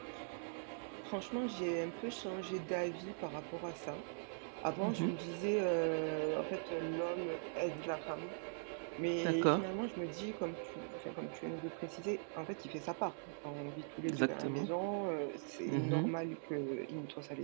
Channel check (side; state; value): left; silent; digital silence